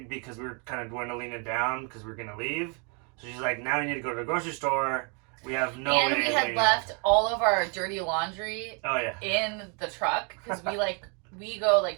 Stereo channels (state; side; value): quieter; left; 36.2 dB